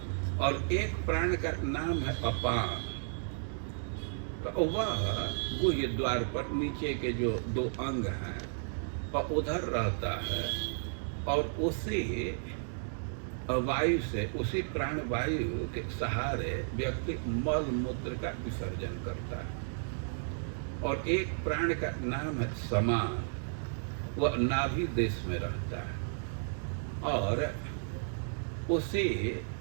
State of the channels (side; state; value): left; silent; digital silence